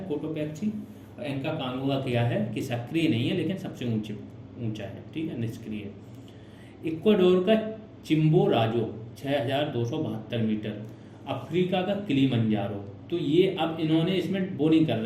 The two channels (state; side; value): identical; both; correlation 1.00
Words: कोटोपैक्सी। और एंका कांगुआ क्या है कि सक्रिय नहीं है लेकिन सबसे ऊंचा है। ठीक है, निष्क्रिय। इक्वाडोर का चिम्बोराजो 6272 मीटर। अफ्रीका का किलिमंजारो तो ये अब इन्होंने इसमें वो नहीं कर